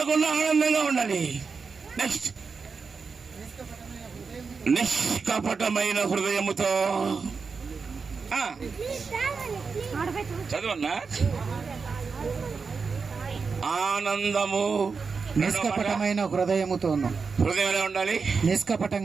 ఆనందంగా ఉండాలి. నెక్స్ట్, నిష్కపటమైన హృదయముతో చదవన్నా. ఆనందము నిష్కపటమైన హృదయముతోను. హృదయం ఎలా ఉండాలి?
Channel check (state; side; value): quieter; left; 5.0 dB